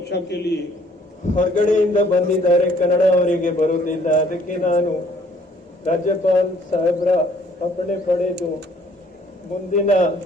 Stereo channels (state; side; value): normal; both; correlation 0.61